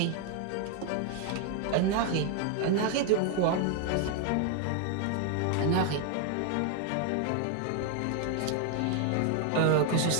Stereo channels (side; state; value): both; different; correlation 0.01